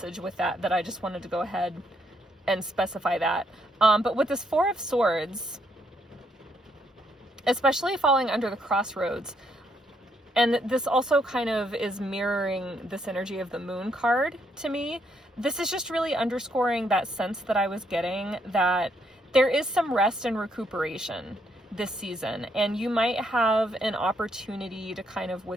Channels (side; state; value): both; normal; correlation 0.74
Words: with that I just wanted to go ahead and specify that. But with this 4 of Swords, especially falling under the crossroads, and this also kind of is mirroring this energy of the Moon card to me. This is just really underscoring that sense that I was getting that there is some rest and recuperation this season, and you might have an opportunity to kind of